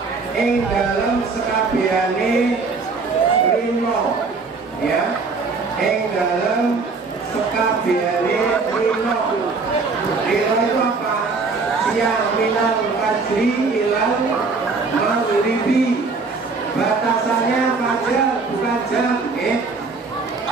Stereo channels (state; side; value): quieter; left; 4.3 dB